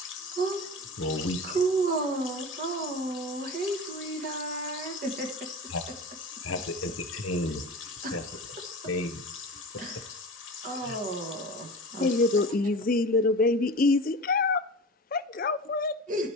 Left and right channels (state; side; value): normal; both; correlation 0.32